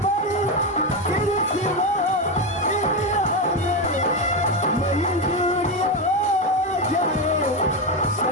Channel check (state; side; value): normal; both; correlation 0.11